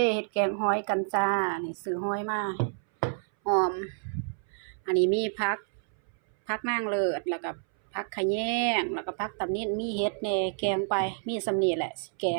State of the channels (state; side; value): silent; left; 59 dB below the other